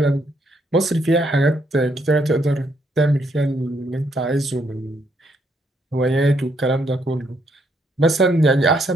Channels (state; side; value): normal; both; correlation 0.73